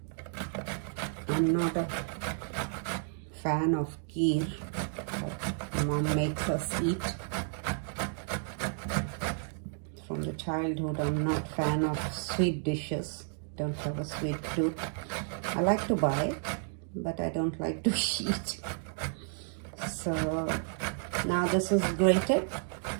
I'm not a fan of kheer, but my mom makes us eat. From the childhood, I'm not fan of sweet dishes. Don't have a sweet tooth. I like to buy it, but I don't like to eat. So now this is grated,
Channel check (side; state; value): left; silent; 56 dB below the other